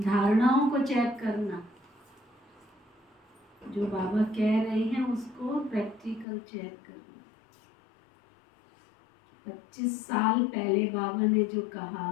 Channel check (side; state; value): right; drops out; at 6.2 s